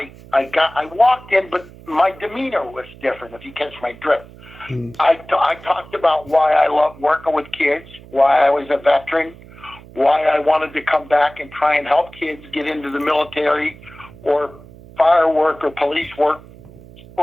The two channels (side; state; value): right; noise; hum, 20 dB below the sound